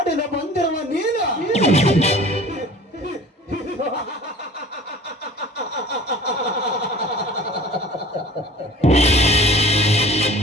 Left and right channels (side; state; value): both; normal; correlation 0.44